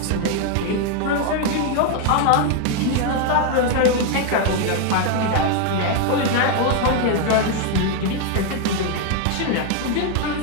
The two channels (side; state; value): both; different; correlation 0.01